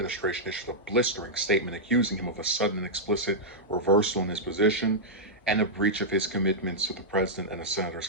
issued a blistering statement accusing him of a sudden and explicit reversal in his position and a breach of his commitments to the president and the senator's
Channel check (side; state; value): both; normal; correlation -0.09